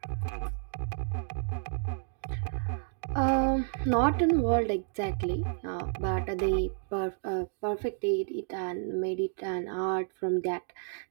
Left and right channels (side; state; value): left; silent; digital silence